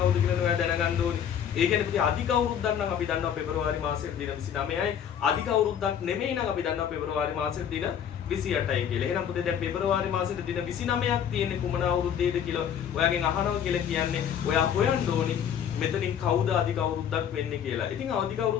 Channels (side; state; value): right; quieter; 8.8 dB